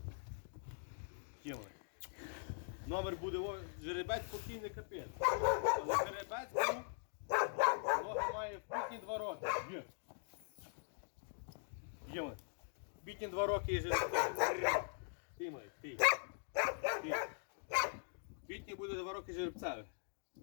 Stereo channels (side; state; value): right; silent; digital silence